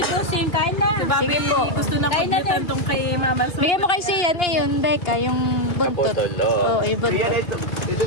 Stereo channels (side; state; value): right; late; 2.8 ms